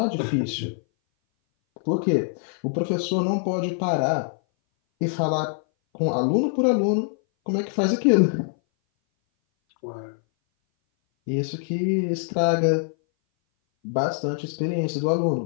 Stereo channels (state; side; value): silent; right; 59 dB below the other